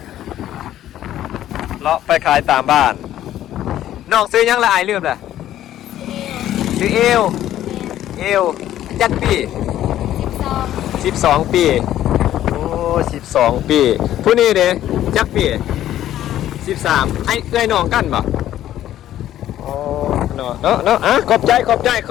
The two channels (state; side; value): quieter; right; 12.4 dB